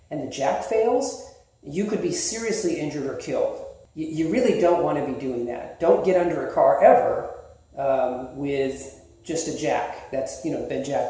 and the jack fails, you could be seriously injured or killed. You really don't want to be doing that. Don't get under a car ever with just a jack that's been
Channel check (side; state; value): both; identical; correlation 1.00